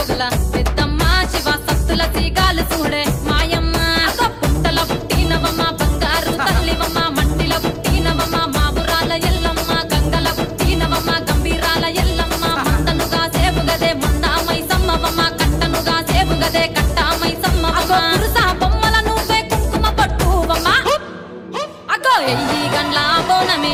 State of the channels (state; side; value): identical; both; correlation 1.00